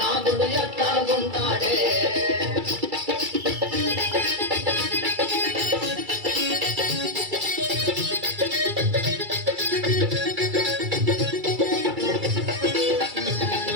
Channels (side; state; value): left; late; 2.3 ms